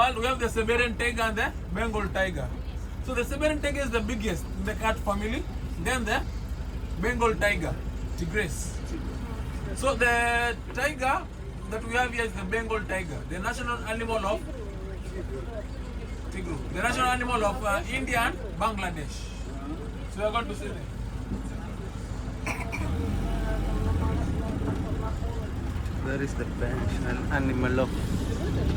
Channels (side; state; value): both; identical; correlation 1.00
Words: We have the Siberian tiger and the Bengal tiger. So the Siberian tiger is the biggest in the cat family. Then the Bengal tiger, tigress. So the tiger that we have here is the Bengal tiger, the national animal of Tigru, the national animal of India and Bangladesh. So we are going to see them. Where is the national animal of?